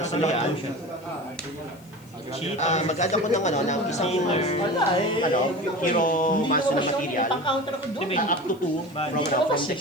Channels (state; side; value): noise; left; hiss, 27 dB below the sound